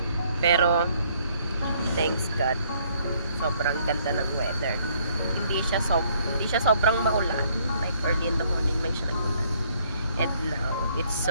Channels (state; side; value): inverted; both; correlation -0.65